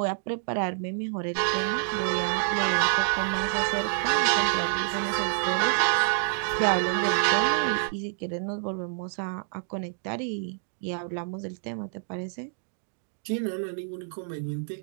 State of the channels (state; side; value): silent; left; digital silence